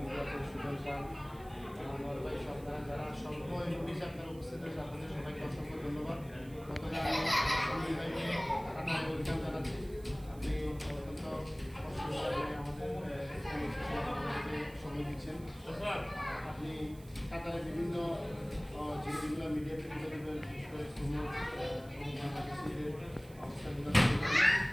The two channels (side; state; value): right; noise; hiss, 23 dB below the sound